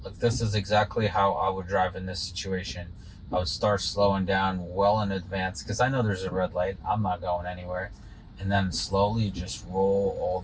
Look, this is exactly how I would drive in this situation. I would start slowing down well in advance because I know there's a red light. I'm not going anywhere. And then slowly just roll all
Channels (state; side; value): identical; both; correlation 1.00